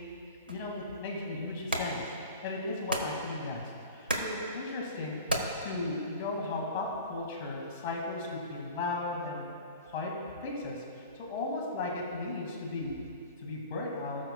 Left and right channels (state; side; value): inverted; both; correlation -0.39